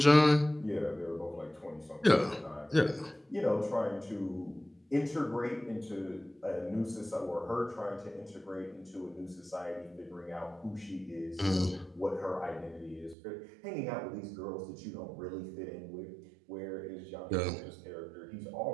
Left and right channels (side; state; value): left; drops out; at 13.2 s